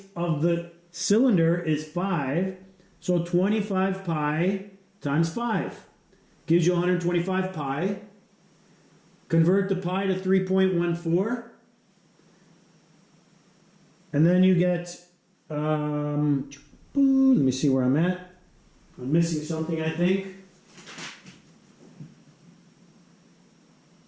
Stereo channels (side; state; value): both; identical; correlation 1.00